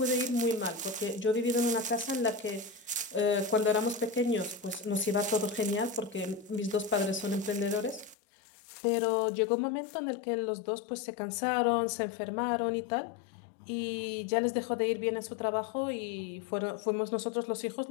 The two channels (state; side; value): drops out; right; at 8.2 s